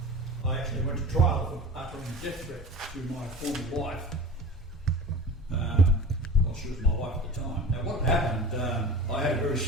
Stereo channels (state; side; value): normal; both; correlation 0.37